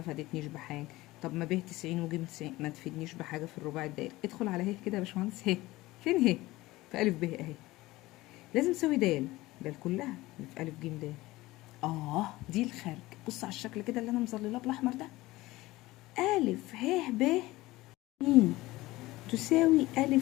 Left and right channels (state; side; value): quieter; right; 18.8 dB